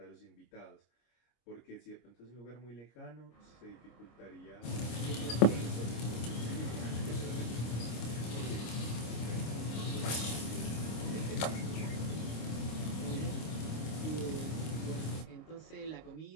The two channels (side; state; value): right; late; 26 ms